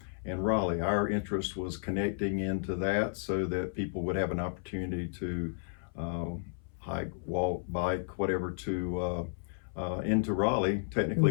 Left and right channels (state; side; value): silent; right; 56 dB below the other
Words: and Raleigh. Our interest was connecting into that so that people would have an opportunity to hike, walk, bike, whatever, to into Raleigh,